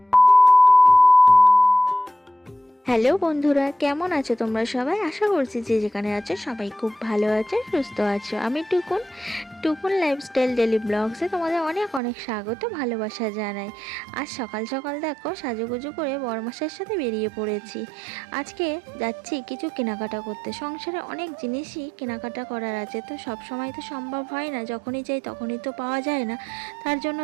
হ্যালো বন্ধুরা, কেমন আছো তোমরা সবাই? আশা করছি যে যেখানে আছো সবাই খুব ভালো আছে, সুস্থ আছো। আমি টুকুন লাইফস্টাইল ডেলি ব্লগসে তোমাদের অনেক অনেক স্বাগত, ভালোবাসা জানাই। আজ সকাল সকাল দেখো সাজুগুজু করে বড়মাসের সাথে বেরিয়ে পড়েছি। আজকে যাচ্ছি কিছু কেনাকাটা করতে। সংসারে অনেক জিনিসই কেনাকাটা করার আছে, তো সব সময় তো সম্ভব হয় না, যখনই যাই তখনই তো পাওয়া যায় না, তার জন্য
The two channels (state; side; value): drops out; left; at 12.0 s